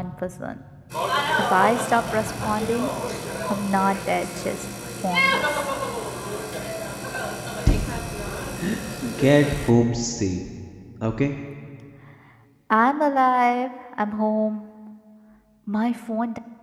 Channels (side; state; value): both; identical; correlation 1.00